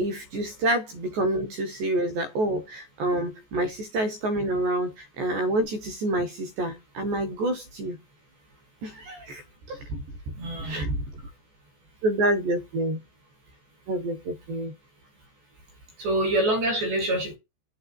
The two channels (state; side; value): late; left; 14 ms